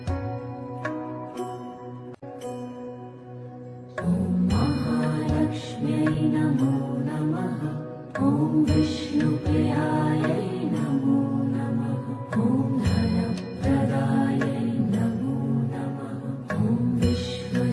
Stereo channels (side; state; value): both; identical; correlation 1.00